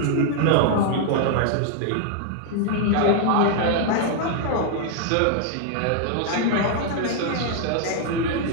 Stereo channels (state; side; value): different; both; correlation 0.00